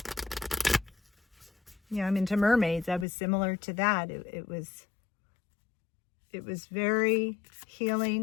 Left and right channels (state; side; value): drops out; right; at 3.1 s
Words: into mermaids. I was similar to that. It was very